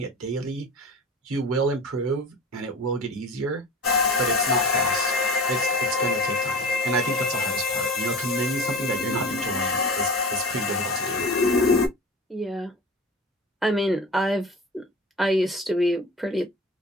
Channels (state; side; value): normal; both; correlation 0.35